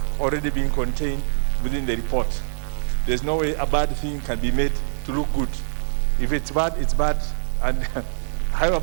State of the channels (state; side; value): silent; left; digital silence